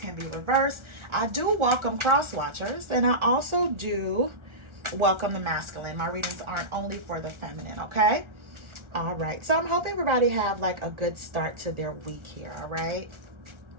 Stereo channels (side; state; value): left; late; 1.4 ms